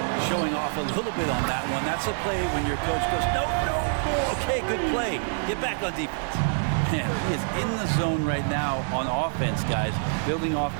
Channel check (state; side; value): silent; left; 61 dB below the other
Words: showing off a little bit on that one. That's a play when your coach goes, no, no, no. Okay, good play. Get back on defense. Man, he is in the zone right now on offense, guys, building off